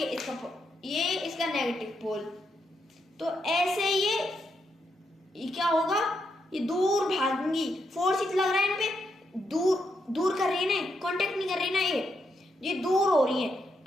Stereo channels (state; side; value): normal; both; correlation 0.81